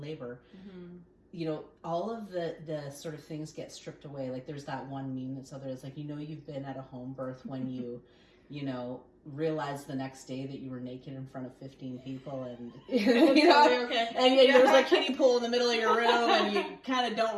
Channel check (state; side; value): identical; both; correlation 1.00